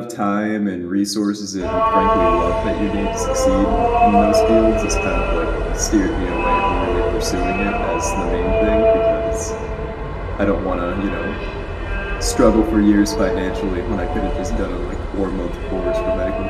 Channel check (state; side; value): identical; both; correlation 1.00